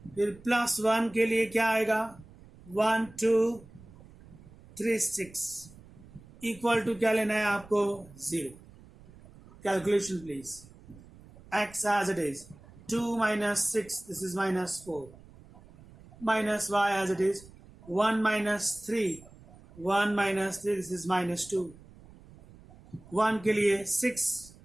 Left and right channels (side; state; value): right; noise; rumble, 22 dB below the sound